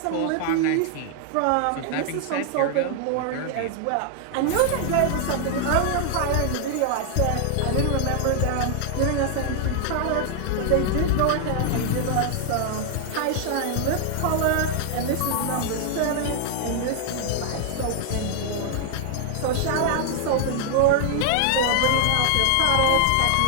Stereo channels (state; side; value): different; both; correlation 0.00